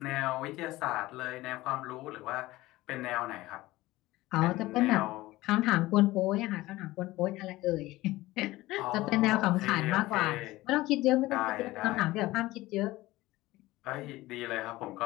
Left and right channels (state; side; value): quieter; right; 18.3 dB